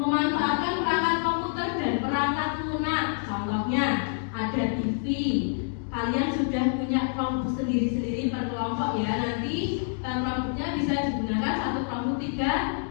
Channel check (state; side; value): silent; right; 60 dB below the other